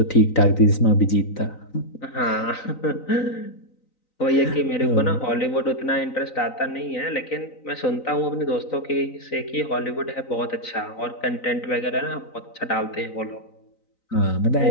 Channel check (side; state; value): right; late; 3.9 ms